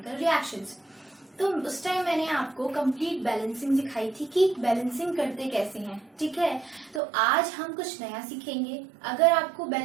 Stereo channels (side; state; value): left; drops out; at 7.0 s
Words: reactions. तो उस time मैंने आपको complete balancing सिखाई थी कि balancing करते कैसे हैं, ठीक है। तो आज हम कुछ नया सीखेंगे। अगर आपको